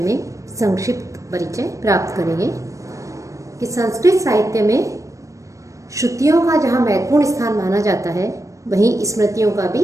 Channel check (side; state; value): left; late; 0.15 ms